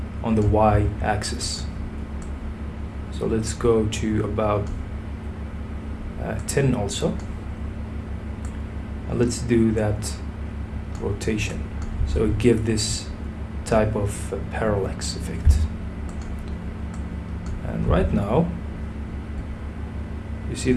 on the y-axis. So let's go to about 10 also. And let's do that rotation. So give this type of parallax effect. And right now, you see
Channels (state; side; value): identical; both; correlation 1.00